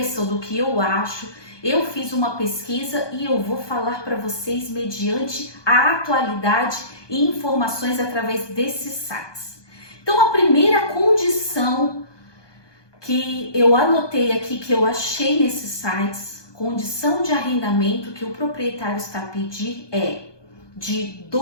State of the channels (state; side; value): late; right; 1.2 ms